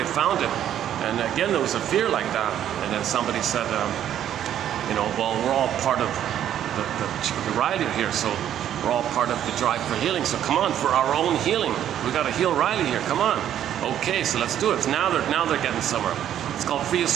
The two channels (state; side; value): quieter; left; 10.7 dB